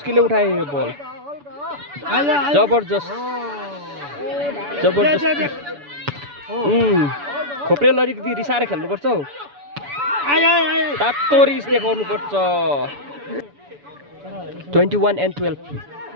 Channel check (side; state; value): left; late; 7.0 ms